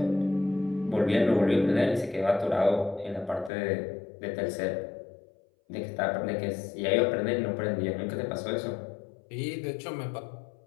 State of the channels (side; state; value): right; drops out; at 3.5 s